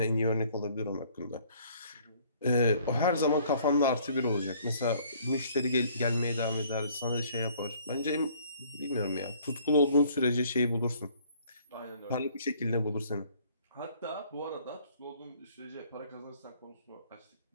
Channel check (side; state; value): both; inverted; correlation -0.59